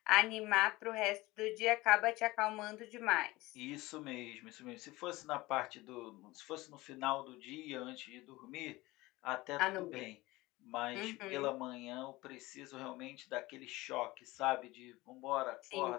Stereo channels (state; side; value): quieter; right; 20.1 dB